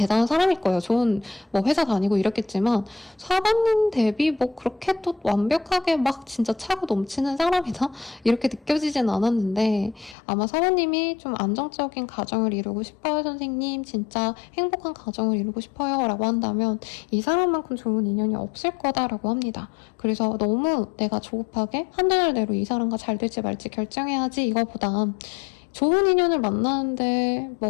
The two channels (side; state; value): right; drops out; at 10.2 s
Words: 사람일 거예요. 좋은 뭐 회사 다니고 이랬겠지만 사부님 대비 뭐 그렇게 또 완벽하게 막 진짜 차고 넘치는 사람이다 이렇게 느껴지진 않았는데, 아마 사부님이 좀 안정적인 가정을 이루고 싶어요 선생님, 진짜 행복한 가정을 이루고 싶어요 라고 한다면 이 사람만큼 좋은 인연이 없을 거다라고 합니다. 그래서 너무 내가 조급하게 한두 달 내로 이 사람과 잘 될지 말지 결정해야지 이거보다, 좋은 인연을 만나는데